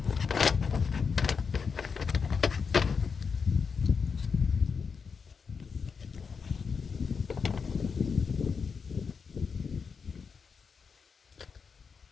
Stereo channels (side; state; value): right; quieter; 5.6 dB